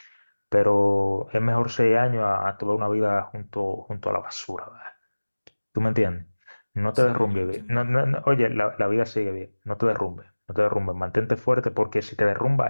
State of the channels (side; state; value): both; inverted; correlation -1.00